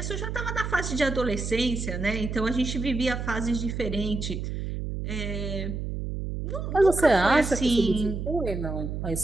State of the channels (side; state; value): right; noise; hum, 4 dB below the sound